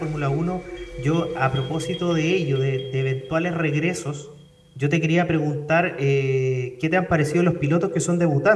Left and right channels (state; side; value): identical; both; correlation 1.00